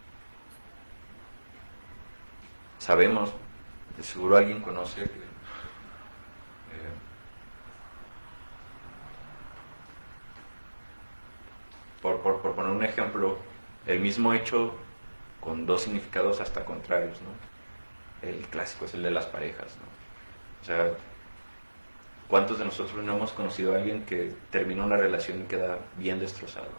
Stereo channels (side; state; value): both; inverted; correlation -1.00